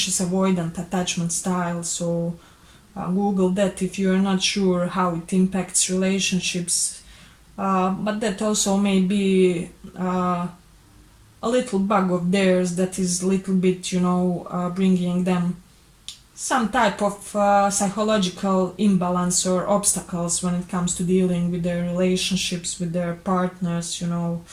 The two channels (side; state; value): both; identical; correlation 1.00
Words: avoidant attachment style. So Google that if you are not sure how it impacts relationships. But that also may be a little bug of theirs that is a little bit, bringing them some type of psychological imbalance or obstacles when it comes to dealing with their relationships with their partners,